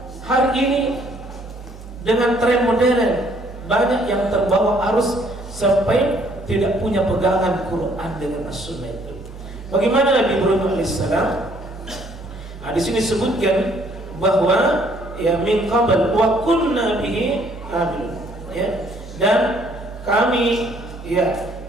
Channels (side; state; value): both; normal; correlation 0.63